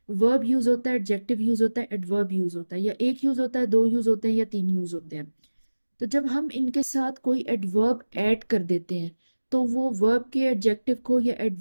वर्ब यूज होता है, एडजेक्टिव यूज होता है, एडवर्ब यूज होता है, या एक यूज होता है, दो यूज होते हैं, या तीन यूज होते हैं। तो जब हम इनके साथ कोई एडवर्ब ऐड कर देते हैं तो वो वर्ब के एडजेक्टिव को या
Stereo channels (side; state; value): both; inverted; correlation -1.00